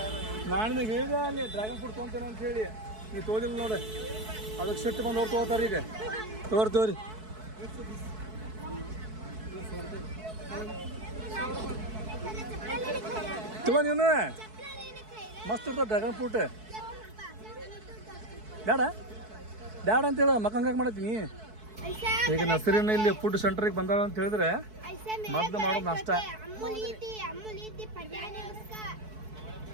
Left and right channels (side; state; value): left; late; 4.6 ms